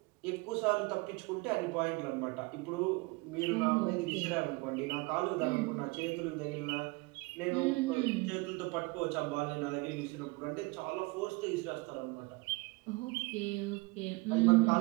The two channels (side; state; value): left; quieter; 25.7 dB